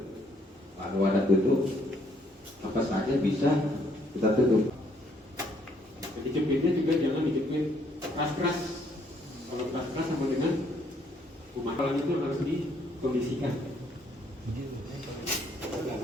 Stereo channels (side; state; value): both; normal; correlation 0.68